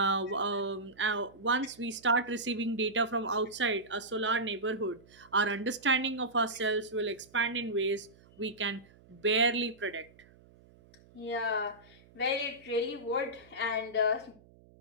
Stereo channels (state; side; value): noise; right; hum, 26 dB below the sound